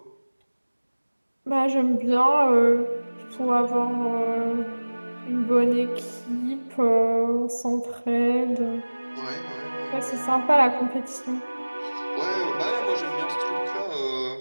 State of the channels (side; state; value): both; inverted; correlation -1.00